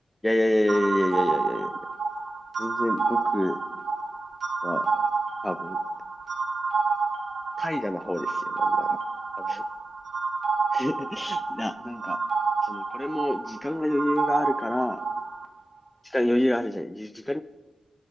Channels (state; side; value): normal; both; correlation 0.93